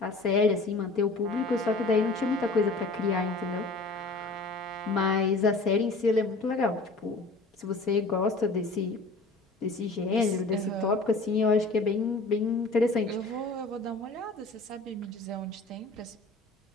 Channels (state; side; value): quieter; right; 3.3 dB